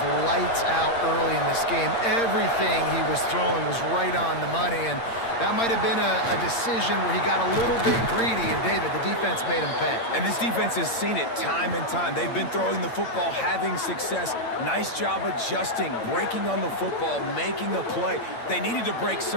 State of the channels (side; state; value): right; late; 8.7 ms